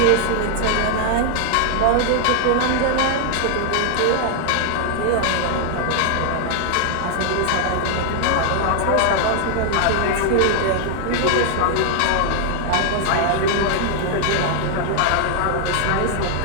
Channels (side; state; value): both; different; correlation 0.00